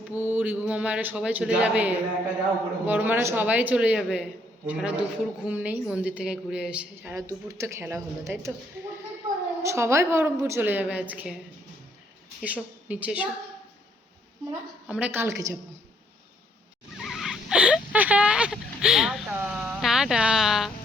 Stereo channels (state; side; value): normal; both; correlation 0.69